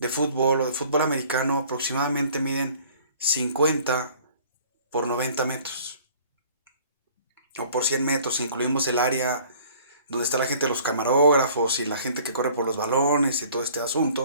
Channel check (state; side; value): inverted; both; correlation -0.52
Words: fútbol o de fútbol americano aproximadamente miden 50 por 90 metros o por 100 metros, si incluimos el área donde está la gente de los camarógrafos y la gente que corre por los balones y todo este